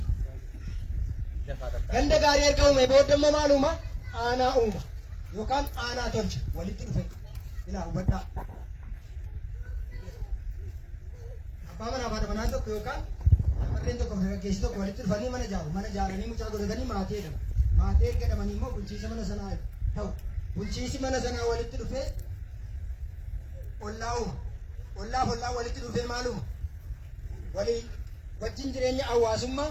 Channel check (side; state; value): both; identical; correlation 1.00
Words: Ganda gaarii erga uume booda immoo maal uuma? Aanaa uuma. Yookaan aanaa tolcha walitti dhufe. Ilaa hubadhaa. Abbaa manaa fi haadha manaa tokko yookaan warreen tokko dargaggeessi tokko walitti dhufanii mana ijaaru. Mana ijaaranii mucaa godhatanii maatii jedhamu. Maatii erga jedhamanii immoo bulchiisa mana sanaa ta'u. Bulchiisi mana sanaa walitti dhufee ollaa uuma. Ollaaf ollaa walitti dhufee maal uuma? Walii wajjin jireenya hawaasummaa